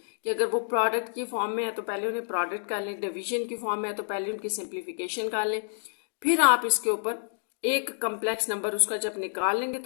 कि अगर वो प्रोडक्ट की फॉर्म में है तो पहले उन्हें प्रोडक्ट कर लें, डिवीजन की फॉर्म में है तो पहले उनकी सिंप्लीफिकेशन कर लें, फिर आप इसके ऊपर एक कम्प्लेक्स नंबर उसका जब निकाल लेंगे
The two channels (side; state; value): right; silent; digital silence